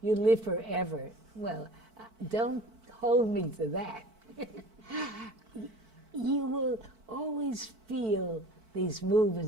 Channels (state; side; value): late; left; 4.5 ms